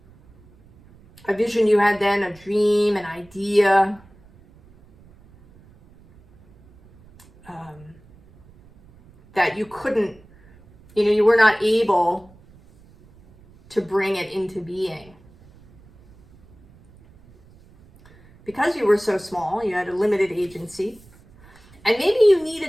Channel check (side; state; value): right; noise; rumble, 27 dB below the sound